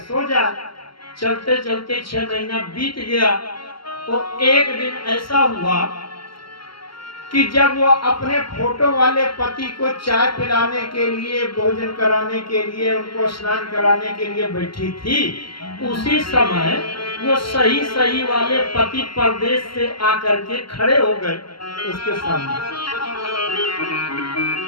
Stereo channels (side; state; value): right; late; 0.74 ms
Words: जा। चलते चलते 6 महीना बीत गया। तो एक दिन ऐसा हुआ कि जब वो अपने फोटो वाले पति को चाय पिलाने के लिए, भोजन कराने के लिए, उनको स्नान कराने के लिए बैठी थी, उसी समय वो सही वाले पति परदेश से आकर के खड़े हो गए उसके सामने।